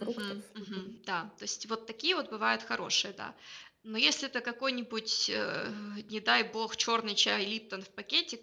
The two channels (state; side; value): identical; both; correlation 1.00